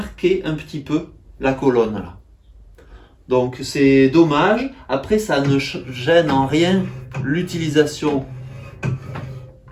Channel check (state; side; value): identical; both; correlation 1.00